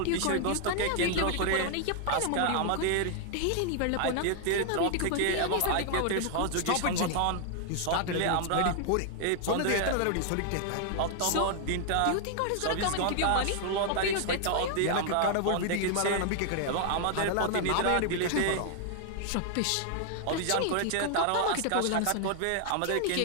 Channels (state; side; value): different; both; correlation 0.00